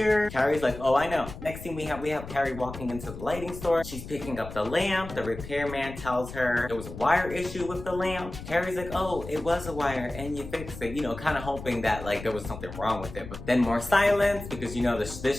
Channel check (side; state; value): left; noise; rumble, 12 dB below the sound